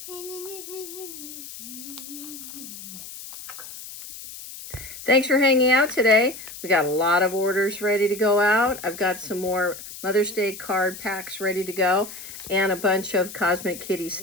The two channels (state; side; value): noise; left; hiss, 13 dB below the sound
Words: Thanks for hanging out today. We got a lot of orders ready to go out. I've got some more Mother's Day card packs ready to go and a bunch of Cosmic Kitty